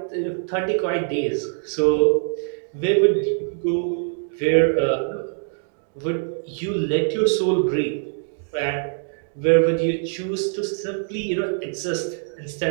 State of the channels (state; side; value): silent; left; 62 dB below the other